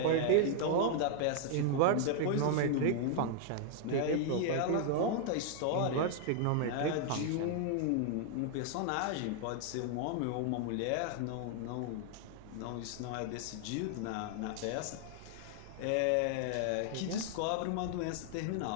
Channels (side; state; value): both; different; correlation 0.00